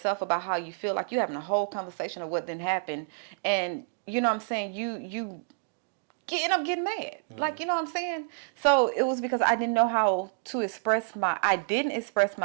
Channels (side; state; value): left; silent; digital silence